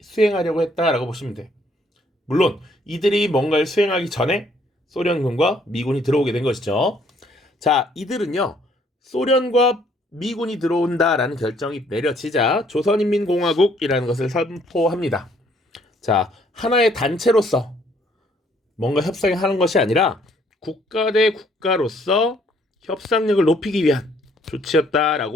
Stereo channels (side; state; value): both; normal; correlation 0.65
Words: 했다라고 보시면 돼. 물론 이들이 뭔가를 수행하기 전에 소련군과 미군이 들어오게 된 것이죠. 자, 이들은요, 소련과 미군이 들어온다라는 결정이 내려지자 조선인민공화국이라는 것을 선포합니다. 자, 하나의 단체로서 뭔가 협상을 하는 것이 아니라 국가 대 국가로서 협상력을 높이기 위한